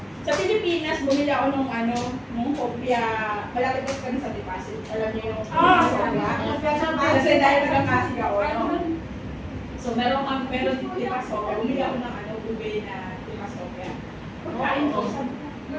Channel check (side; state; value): both; identical; correlation 1.00